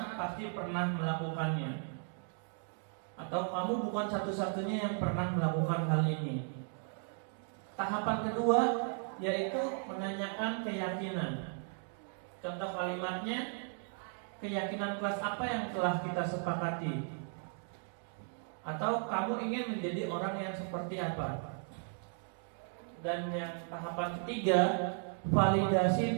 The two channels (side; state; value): left; silent; 54 dB below the other